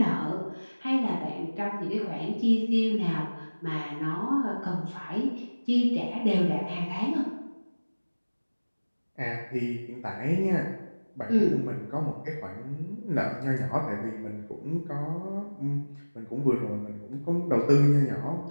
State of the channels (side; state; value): both; inverted; correlation -1.00